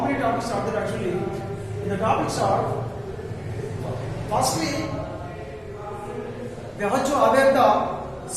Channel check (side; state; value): both; identical; correlation 1.00